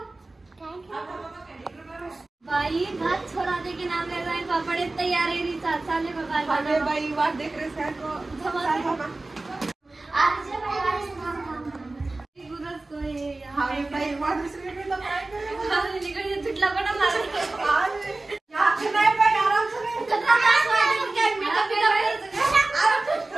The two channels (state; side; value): quieter; left; 3.1 dB